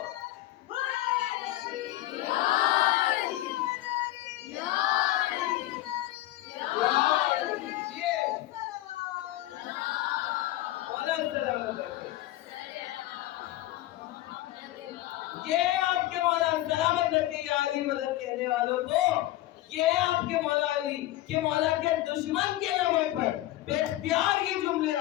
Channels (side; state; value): right; quieter; 15.7 dB